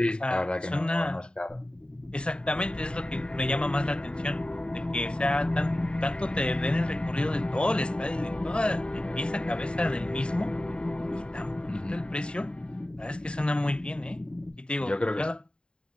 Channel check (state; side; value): late; right; 0.050 ms